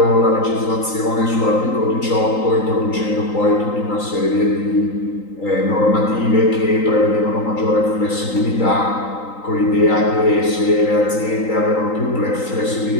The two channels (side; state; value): right; late; 3.9 ms